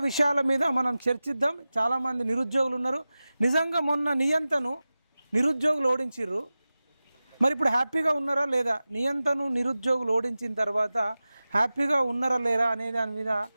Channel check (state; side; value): inverted; both; correlation -0.96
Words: విషయాల మీద మనం చర్చిద్దాం. చాలామంది నిరుద్యోగులు ఉన్నారు. నిజంగా మొన్న నియంతను నిరుద్యోగులు ఓడించిర్రు, మరి ఇప్పుడు హ్యాపీగా ఉన్నారా లేదా, నియంతను నిరుద్యోగులు ఓడించిన తర్వాత హ్యాపీగా ఉన్నారా లేరా అనే దాని మీద